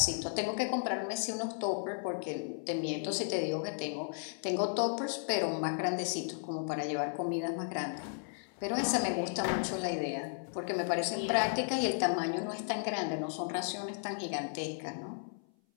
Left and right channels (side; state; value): right; silent; 55 dB below the other